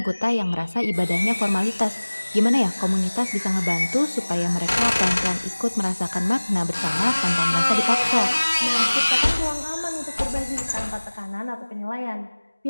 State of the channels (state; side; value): inverted; both; correlation -1.00